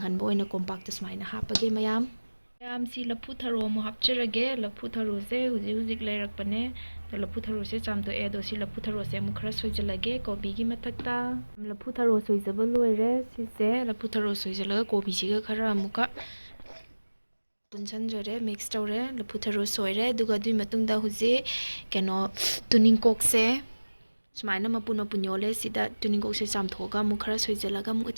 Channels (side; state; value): both; inverted; correlation -1.00